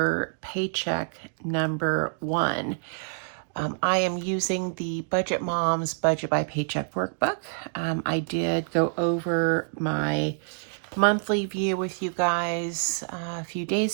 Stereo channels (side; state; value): left; silent; digital silence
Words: paycheck number 1. I am using the Budget Moms Budget by Paycheck workbook. I did go over my monthly view with you guys a few